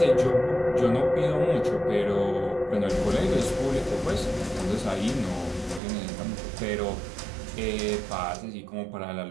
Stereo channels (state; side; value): drops out; left; at 5.8 s